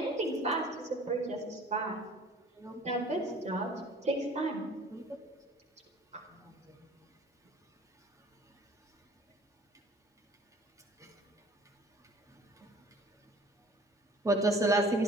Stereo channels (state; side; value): normal; both; correlation 0.49